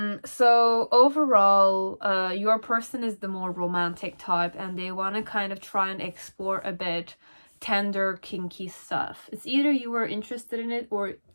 overall, your person is the more romantic type, and they want to kind of try and explore a bit tender, kinky stuff. It's either you were interested in it, or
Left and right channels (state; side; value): inverted; both; correlation -1.00